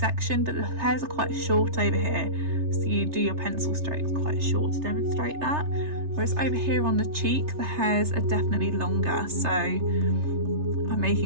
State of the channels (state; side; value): late; left; 3.3 ms